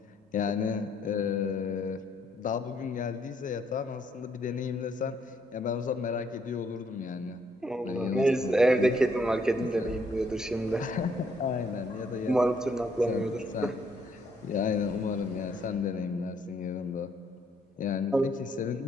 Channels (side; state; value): both; normal; correlation 0.69